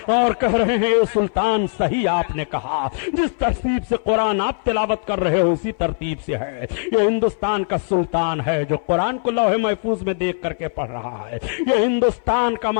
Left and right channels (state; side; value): silent; right; 60 dB below the other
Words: کہہ رہے ہیں, اے سلطان, صحیح آپ نے کہا, جس ترتیب سے قرآن آپ تلاوت کر رہے ہو اسی ترتیب سے ہے. یہ ہندوستان کا سلطان ہے جو قرآن کو لوح محفوظ میں دیکھ کر کے پڑھ رہا ہے. یہ ہندوستان کا